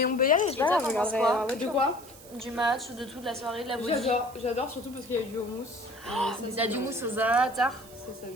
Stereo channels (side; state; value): right; noise; hiss, 20 dB below the sound